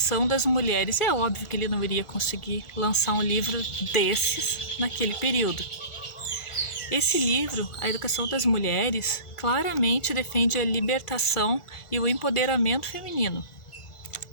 das Mulheres. É óbvio que ele não iria conseguir lançar um livro desses naquele período. Esse livro, A Educação das Mulheres, claramente defende a libertação e o empoderamento feminino,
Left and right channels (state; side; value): late; right; 1.4 ms